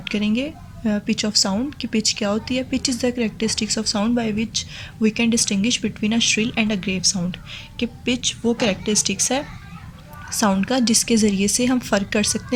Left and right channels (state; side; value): identical; both; correlation 1.00